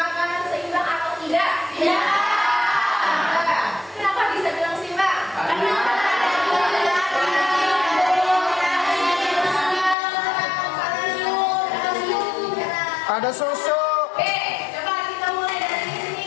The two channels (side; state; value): right; drops out; at 10.0 s